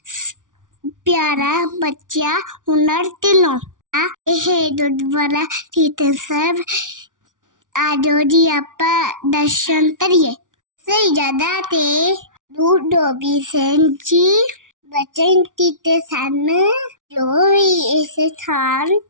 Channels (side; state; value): left; late; 0.88 ms